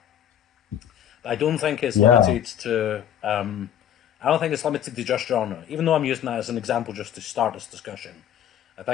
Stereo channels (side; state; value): right; quieter; 10.2 dB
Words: But I don't think it's limited to... I don't think it's limited to just genre, even though I'm using that as an example just to start this discussion. I